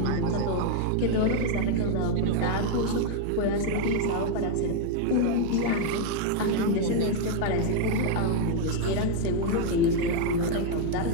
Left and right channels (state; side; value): different; both; correlation 0.01